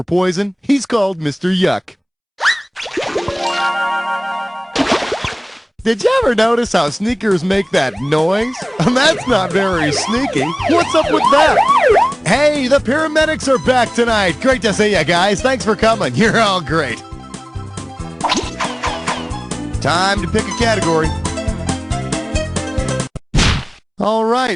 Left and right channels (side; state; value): both; identical; correlation 1.00